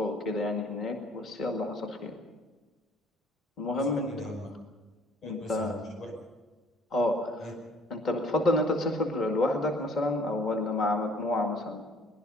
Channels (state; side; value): normal; both; correlation 0.57